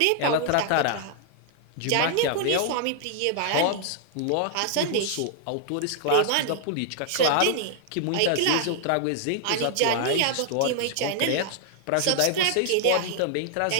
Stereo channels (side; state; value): both; different; correlation 0.00